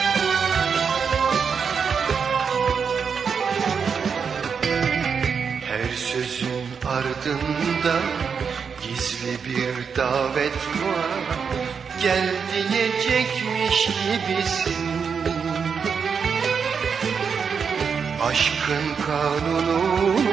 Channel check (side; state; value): left; quieter; 6.2 dB